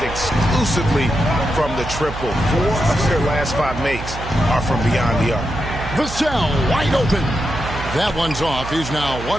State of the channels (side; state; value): right; noise; hum, 10 dB below the sound